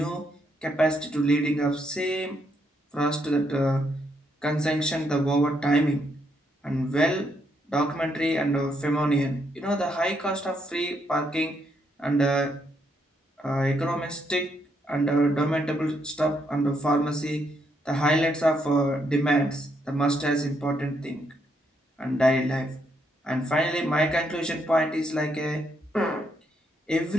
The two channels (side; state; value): both; normal; correlation 0.76